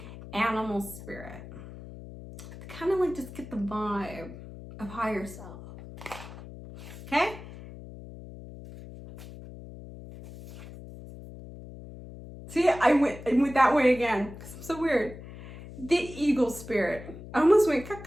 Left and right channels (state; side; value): noise; left; hum, 14 dB below the sound